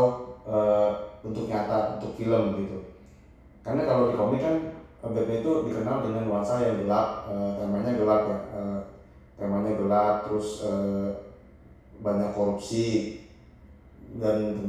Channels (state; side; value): identical; both; correlation 1.00